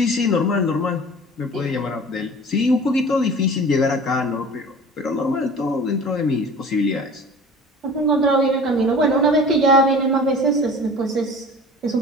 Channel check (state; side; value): normal; both; correlation 0.41